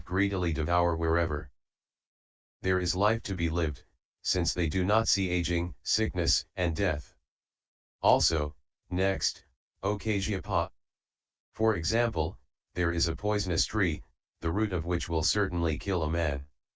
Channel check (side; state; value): both; identical; correlation 1.00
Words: greedily devour wherever there is life to be lived, since they do not see aging, sickness, and death. Also, next, O Kasyapa. For example, there is a poisonous tree, the root of which will certainly kill a man.